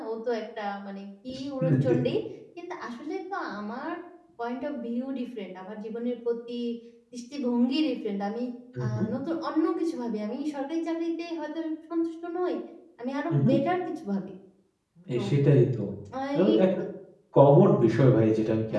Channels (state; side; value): identical; both; correlation 1.00